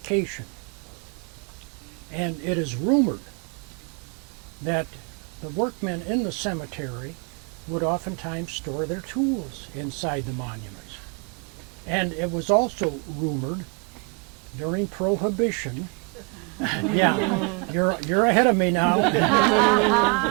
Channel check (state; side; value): quieter; left; 34.4 dB